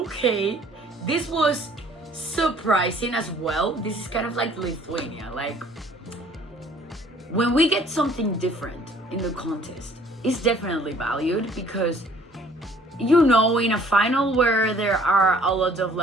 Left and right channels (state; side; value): normal; both; correlation 0.56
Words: this was surprising as well. This is kind of like Lithuania. Like, when we get something different in the contest, it's definitely valued, because in a final where there are a lot of